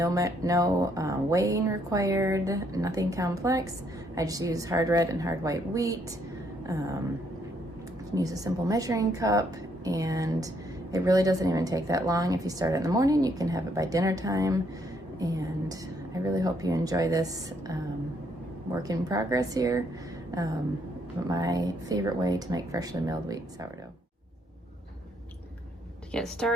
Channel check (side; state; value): both; normal; correlation 0.71